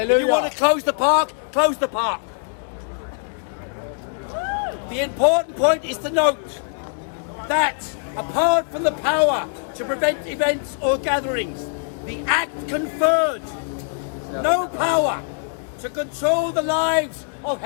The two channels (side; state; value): right; silent; digital silence